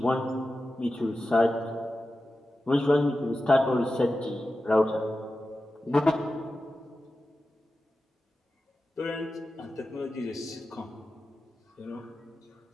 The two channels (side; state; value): both; normal; correlation 0.93